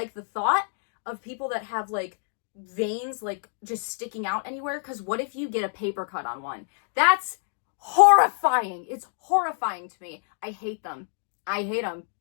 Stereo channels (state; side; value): silent; right; 60 dB below the other